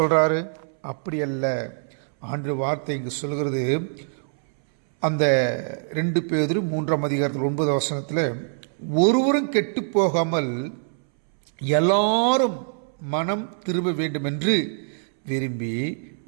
அப்படி அல்ல. ஆண்டு வார்த்தை இங்கு சொல்கிறது, அந்த 2 பேதுரு 3ஆம் அதிகாரத்தில் 9வது வசனத்தில், ஒருவரும் கெட்டு போகாமல் எல்லாரும் மனம் திரும்ப வேண்டும் என்று விரும்பி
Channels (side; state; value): left; silent; 62 dB below the other